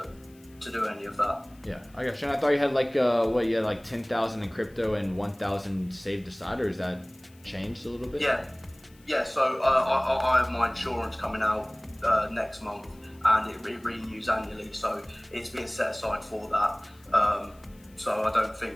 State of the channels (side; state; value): left; noise; hiss, 29 dB below the sound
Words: do any of that. Yeah, I got you. And I thought you had like 10,000 in crypto and 1,000 saved aside, or is that changed a little bit? Yeah. So I have my insurance coming out next month, and it renews annually. So it's being set aside for that. So I don't